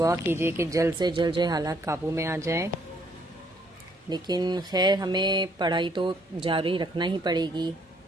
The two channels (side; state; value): both; normal; correlation 0.67